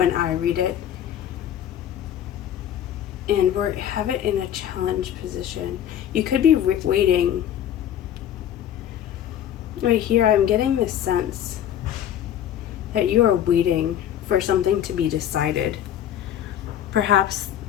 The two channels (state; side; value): quieter; right; 10.5 dB